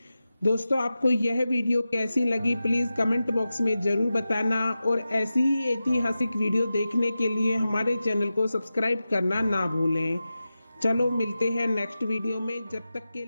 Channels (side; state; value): both; inverted; correlation -0.93